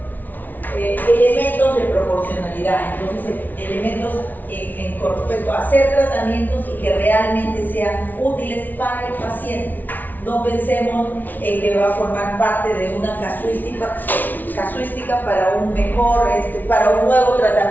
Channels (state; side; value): late; right; 0.083 ms